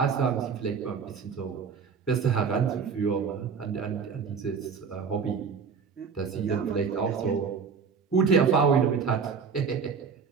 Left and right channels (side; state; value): left; quieter; 6.0 dB